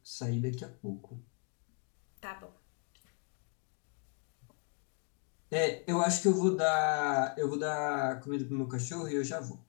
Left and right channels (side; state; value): right; quieter; 37.8 dB